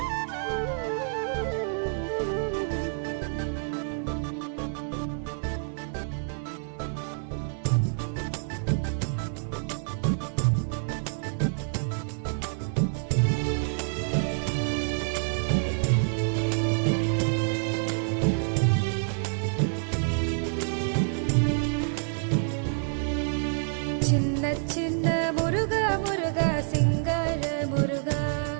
சின்ன முருகா முருகா சிங்கார முருகா,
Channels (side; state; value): left; silent; 59 dB below the other